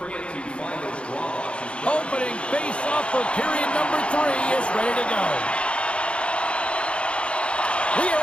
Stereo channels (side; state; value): right; late; 0.058 ms